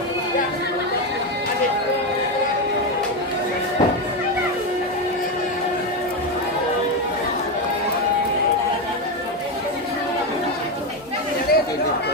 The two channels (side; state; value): both; normal; correlation 0.11